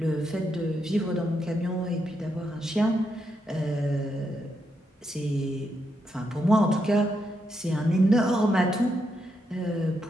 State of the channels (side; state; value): both; normal; correlation 0.81